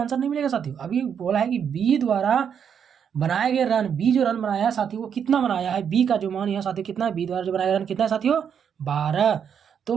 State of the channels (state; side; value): quieter; left; 7.8 dB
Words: नहीं मिलेगा साथियों, अभी बोला है कि बी द्वारा बनाए गए रन, बी जो रन बनाया है साथियों वो कितना बनाया है, बी का जो मान यहाँ साथियों कितना है, बी द्वारा जो बनाया गया रन कितना है साथियों 12। तो